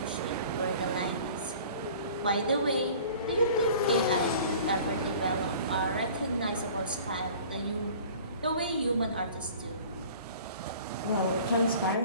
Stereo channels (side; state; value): both; inverted; correlation -0.46